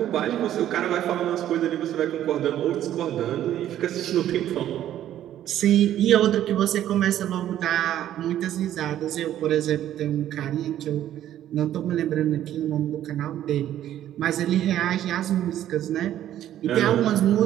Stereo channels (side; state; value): left; quieter; 11.9 dB